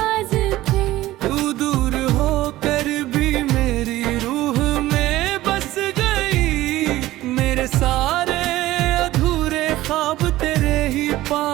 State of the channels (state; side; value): quieter; left; 16.3 dB